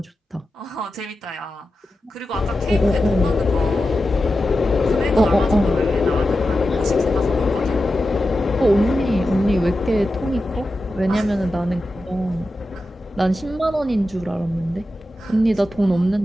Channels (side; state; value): both; normal; correlation 0.91